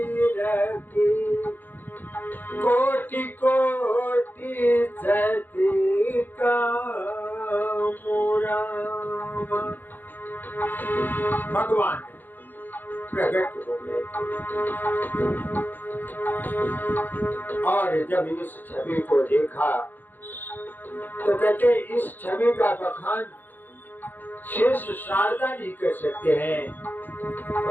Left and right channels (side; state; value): right; late; 0.088 ms